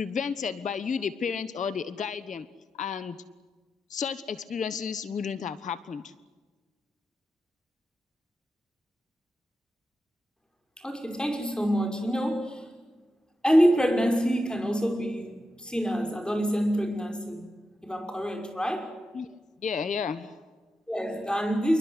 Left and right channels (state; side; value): normal; both; correlation 0.88